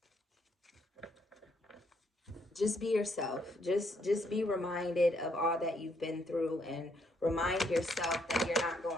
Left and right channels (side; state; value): both; normal; correlation 0.72